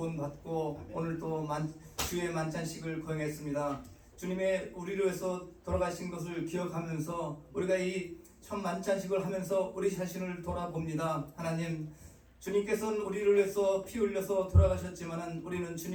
오늘 또 주의 만찬식을 거행했습니다. 주님의 우리를 위해서 돌아가신 것을 기억하면서 우리가 이 첫 만찬식을 하면서 우리 자신을 돌아봅니다. 하나님, 주님께서는 우리를 위해서 피 흘려서 돌아가셨지만은 우리는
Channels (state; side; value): identical; both; correlation 1.00